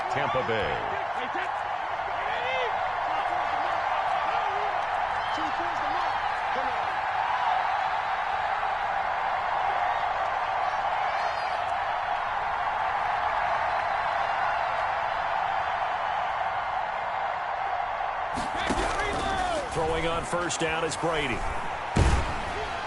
Tampa Bay. Throwing on first down is Brady.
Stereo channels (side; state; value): both; identical; correlation 1.00